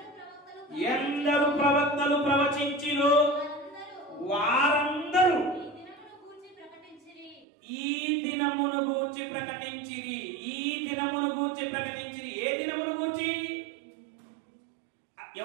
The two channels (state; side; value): drops out; left; at 7.5 s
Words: ఎందరు ప్రవక్తలు ప్రవచించిరో వారందరూ ఈ దినమును గూర్చి ప్రకటించిరి. ఈ దినమును గూర్చి ప్రకటించిరి. ఏ దినమును గూర్చి?